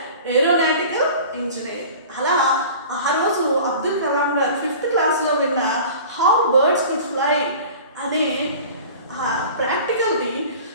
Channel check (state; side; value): inverted; both; correlation -0.41